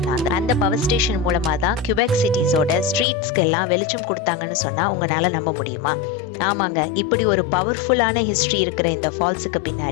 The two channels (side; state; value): right; drops out; at 3.1 s